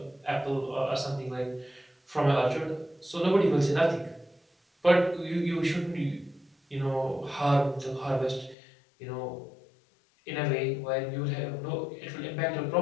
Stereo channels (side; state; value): right; drops out; at 8.6 s